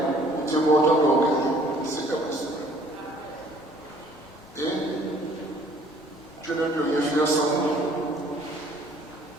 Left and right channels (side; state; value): both; normal; correlation 0.57